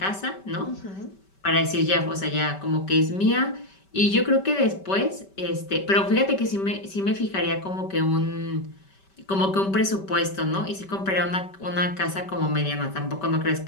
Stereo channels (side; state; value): right; late; 5.2 ms